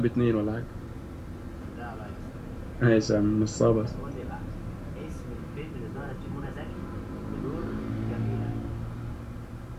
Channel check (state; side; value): identical; both; correlation 1.00